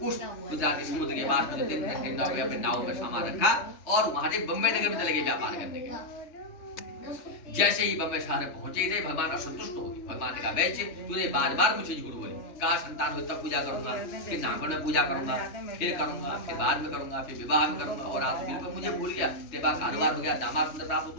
गुजरात के समुद्र के पास में 3 अपने नाव में सामान रखा और वहां से बम्बई नगर में चले गए व्यापार करने के। जैसे ही बम्बई शहर पहुंचे थे भगवान असंतुष्ट हो गए। भगवान ने कहा वैश्य तूने बार मुझे झूठ बोली, कहा संतान हो तब पूजा करूंगा, फिर नामकरण में पूजा करूंगा, फिर करूंगा, फिर बाद में करूंगा, फिर विवाह में करूंगा, और आज बिल्कुल मुझे भूल गया, तेरे पास कारोबार हो गया, दामाद सुंदर प्राप्त हो,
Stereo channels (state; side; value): late; right; 3.2 ms